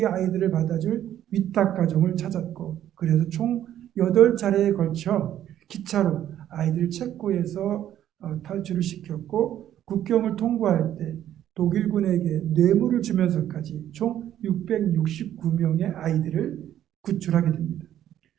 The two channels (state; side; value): quieter; left; 11.4 dB